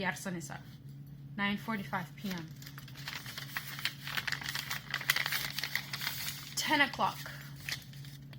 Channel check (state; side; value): identical; both; correlation 1.00